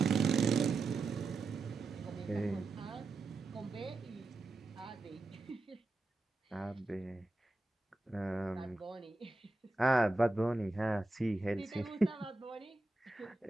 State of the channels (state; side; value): quieter; left; 3.1 dB